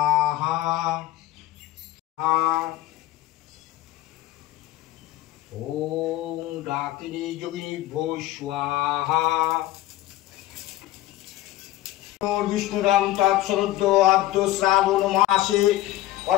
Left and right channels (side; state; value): right; quieter; 15.5 dB